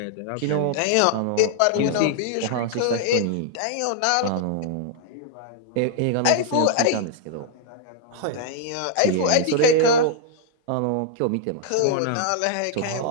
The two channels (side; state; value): both; different; correlation -0.01